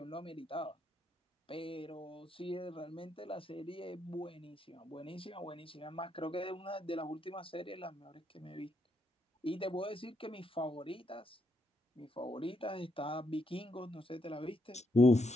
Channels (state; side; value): normal; both; correlation 0.78